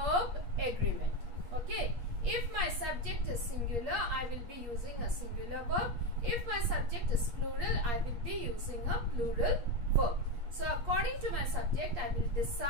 agreement. Okay. If my subject is singular, I will be using a singular verb. If my subject is plural, I will be using a plural verb. So according to my subject, I will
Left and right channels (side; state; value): left; late; 8.5 ms